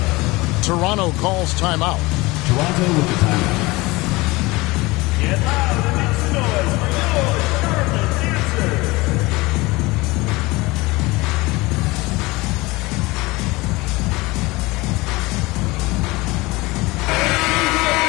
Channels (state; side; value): quieter; right; 22.2 dB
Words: Toronto calls timeout. Toronto with the timeout.